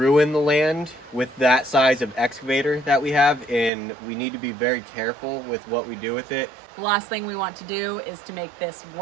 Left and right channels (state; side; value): drops out; left; at 3.7 s